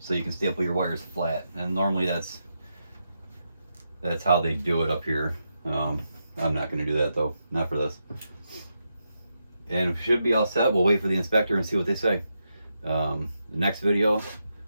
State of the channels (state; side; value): inverted; both; correlation -0.85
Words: you can staple your wires flat. And normally that's how they do it up here. I'm not going to do that though, not for this. And we should be all set. We'll wait for the inspector and see what they say. The next video,